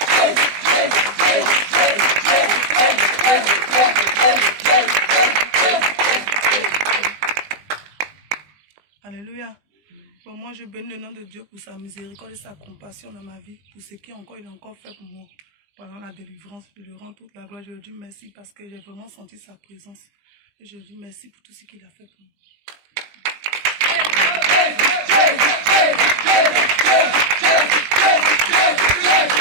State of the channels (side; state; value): left; late; 20 ms